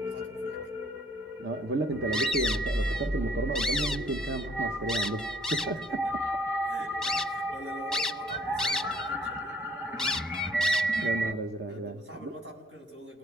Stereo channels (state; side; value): normal; both; correlation 0.62